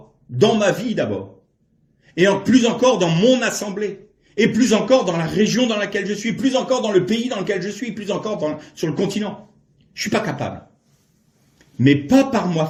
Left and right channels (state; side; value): identical; both; correlation 1.00